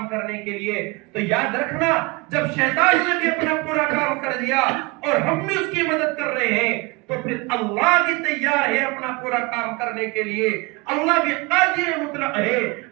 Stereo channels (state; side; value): quieter; left; 26.2 dB